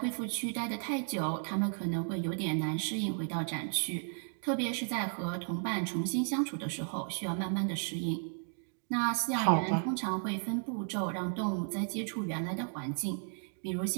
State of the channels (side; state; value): left; silent; 55 dB below the other